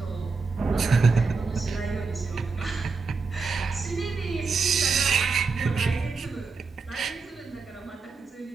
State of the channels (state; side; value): quieter; left; 4.6 dB